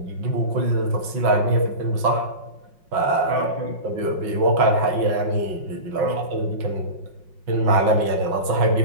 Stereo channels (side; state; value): left; late; 5.5 ms